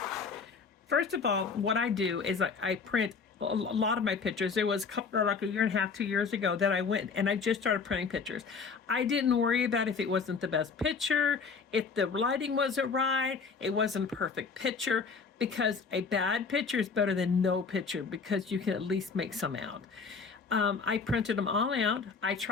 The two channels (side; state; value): right; quieter; 5.3 dB